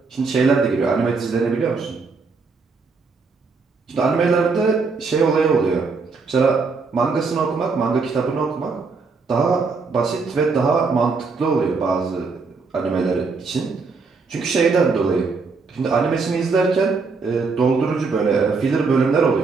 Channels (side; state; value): left; quieter; 4.5 dB